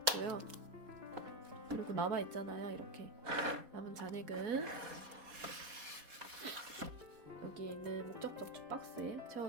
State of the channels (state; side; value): late; left; 4.1 ms